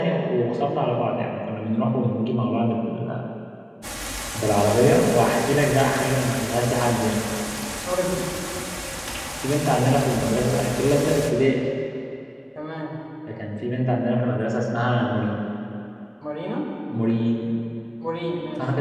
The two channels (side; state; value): both; identical; correlation 1.00